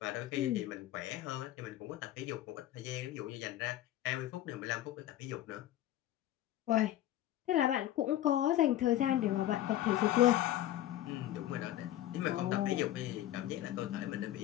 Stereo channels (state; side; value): quieter; right; 13.3 dB